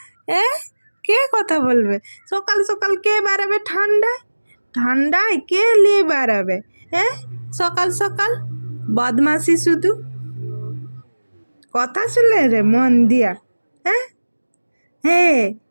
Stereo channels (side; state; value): both; inverted; correlation -1.00